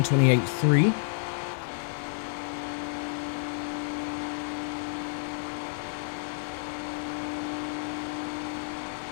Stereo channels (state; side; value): silent; right; digital silence